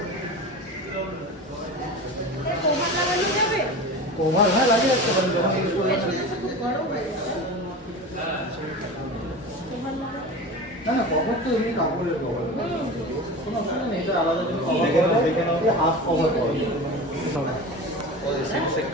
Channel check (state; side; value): normal; both; correlation 0.31